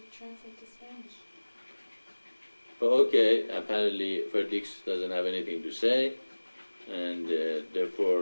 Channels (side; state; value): both; inverted; correlation -1.00